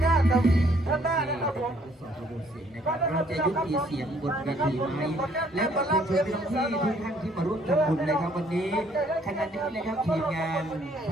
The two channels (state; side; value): normal; both; correlation 0.63